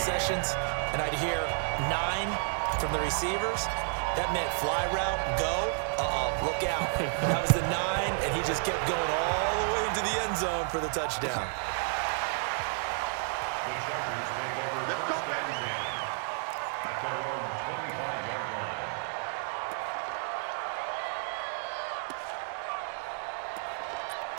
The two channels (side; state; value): left; silent; 56 dB below the other